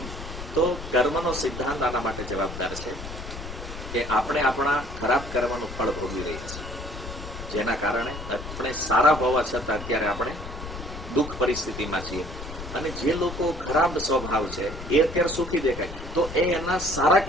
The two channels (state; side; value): noise; left; rumble, 10 dB below the sound